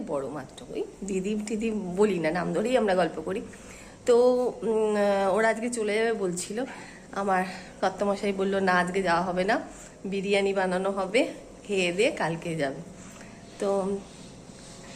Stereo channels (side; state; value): both; identical; correlation 1.00